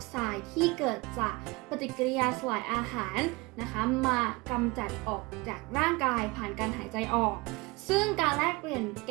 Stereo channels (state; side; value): quieter; left; 25.0 dB